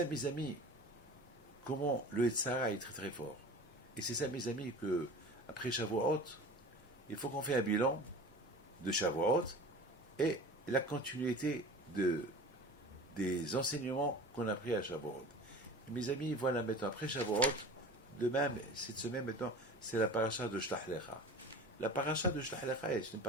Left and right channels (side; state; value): both; normal; correlation 0.37